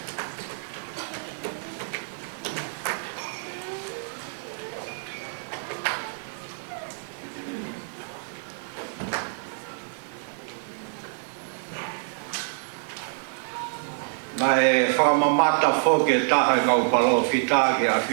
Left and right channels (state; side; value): silent; left; digital silence